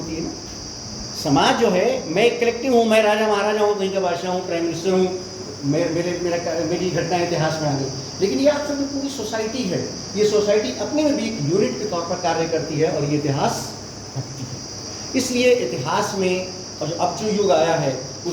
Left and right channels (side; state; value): both; identical; correlation 1.00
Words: है ना। समाज जो है, मैं एक कलेक्टिव हूँ, मैं राजा महाराजा हूँ, कहीं का बादशाह हूँ, प्राइम मिनिस्टर हूँ, मेरी घटना इतिहास में आ गई, लेकिन ये आप सब पूरी सोसाइटी है। ये सोसाइटी अपने में भी एक यूनिट के तौर पर कार्य करती है और ये इतिहास रखती है। इसलिए इतिहास में, और अब जो युग आया है